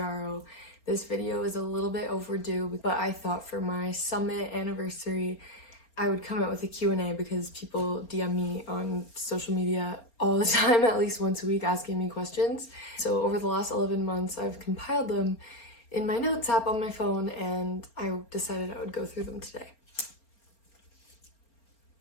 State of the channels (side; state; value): right; late; 4.4 ms